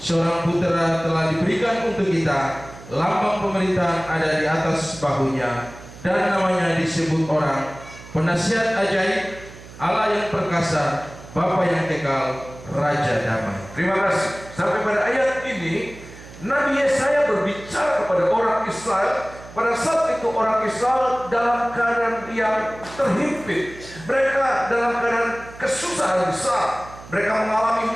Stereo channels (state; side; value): noise; right; hum, 18 dB below the sound